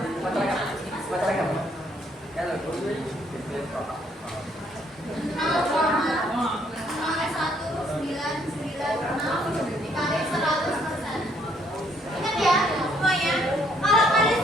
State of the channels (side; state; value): both; normal; correlation 0.67